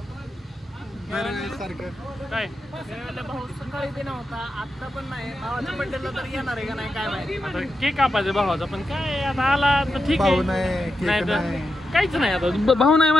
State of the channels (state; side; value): normal; both; correlation 0.88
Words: काय भाऊ सकाळी ते नव्हता आता पण नाही भावाच्या बड्डेला तर येणार आहे का नाही काय माहिती. आता केक कापायचा भावाचा पण काय आता आला तर ठीक भाऊ आहे. नाही केक नाही तर नाही. काहीच नाही आता भाऊ नाही